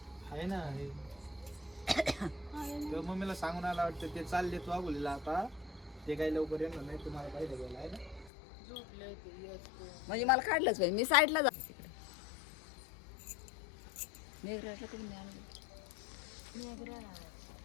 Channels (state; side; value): drops out; right; at 8.3 s